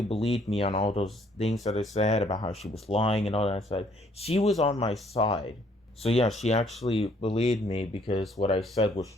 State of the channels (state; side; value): normal; both; correlation 0.64